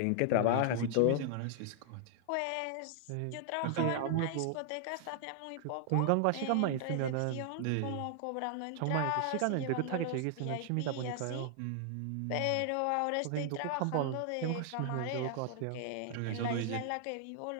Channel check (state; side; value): different; both; correlation 0.00